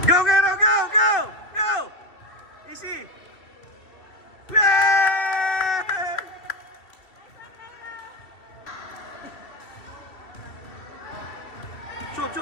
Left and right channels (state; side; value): late; right; 2.9 ms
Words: Go, Gero, go, go! Go! Easy! Yeah! Shoot,